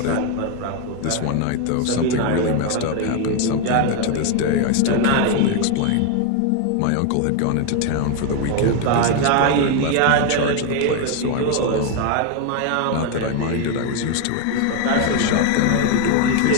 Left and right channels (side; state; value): both; different; correlation 0.01